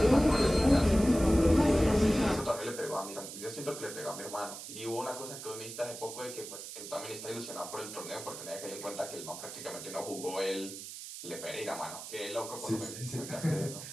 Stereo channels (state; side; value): noise; right; hiss, 10 dB below the sound